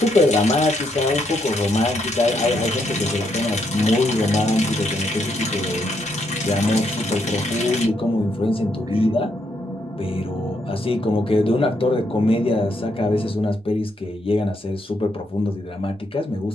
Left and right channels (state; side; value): normal; both; correlation 0.76